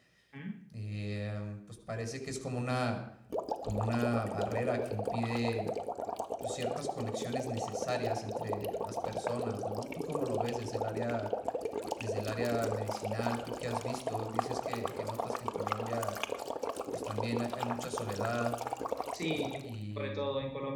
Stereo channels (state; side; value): identical; both; correlation 1.00